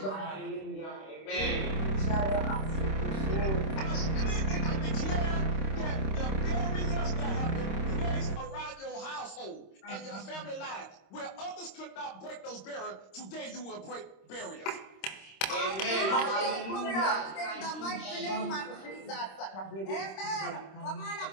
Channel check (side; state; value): right; late; 26 ms